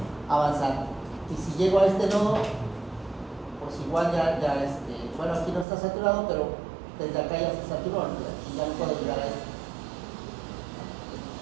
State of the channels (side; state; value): left; drops out; at 5.7 s